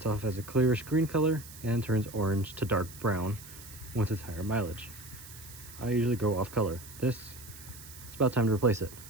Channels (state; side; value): noise; right; hiss, 16 dB below the sound